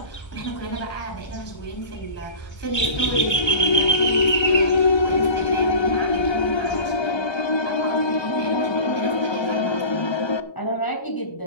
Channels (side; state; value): right; late; 1.3 ms